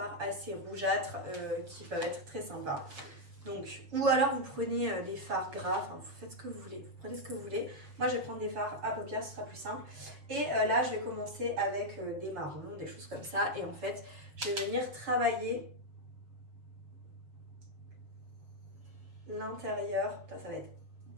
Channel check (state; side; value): late; left; 7.3 ms